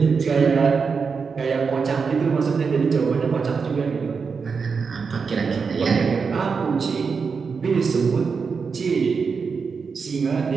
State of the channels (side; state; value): left; quieter; 5.4 dB